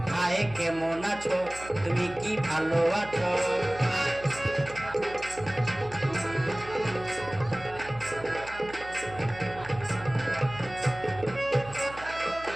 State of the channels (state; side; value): noise; right; hum, 17 dB below the sound